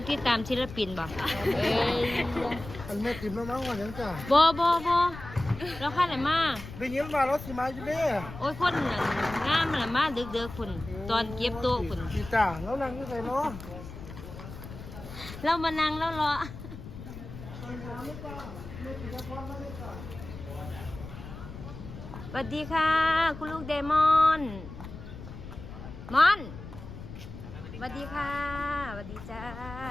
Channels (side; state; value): left; noise; rumble, 12 dB below the sound